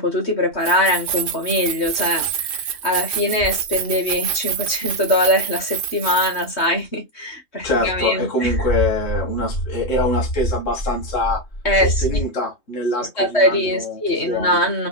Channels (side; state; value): right; late; 3.2 ms